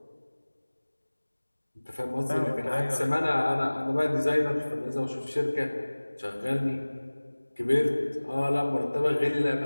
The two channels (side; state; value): both; inverted; correlation -1.00